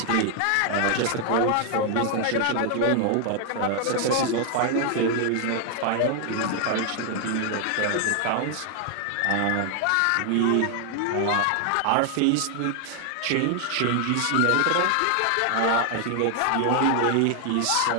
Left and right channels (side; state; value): both; different; correlation 0.00